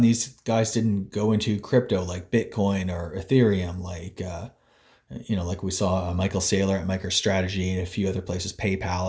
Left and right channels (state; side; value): identical; both; correlation 1.00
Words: guys didn't go into crypto like Bitcoin or Ethereum, like you know, like we saw Michael Saylor at MicroStrategy and a few other places,